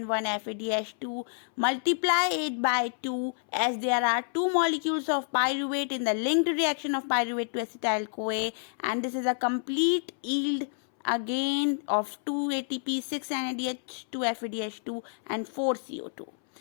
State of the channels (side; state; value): right; silent; 59 dB below the other